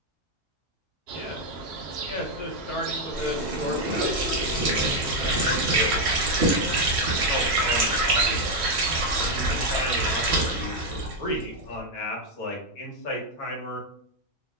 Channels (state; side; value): normal; both; correlation 0.03